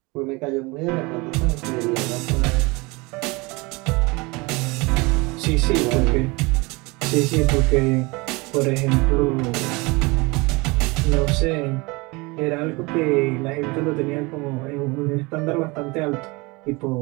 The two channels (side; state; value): left; quieter; 25.4 dB